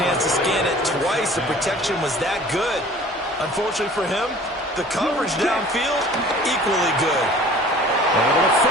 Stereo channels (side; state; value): both; normal; correlation 0.47